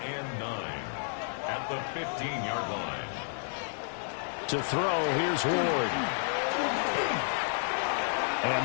At the 15-yard line. To throw, here's Ward.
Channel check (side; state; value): right; silent; digital silence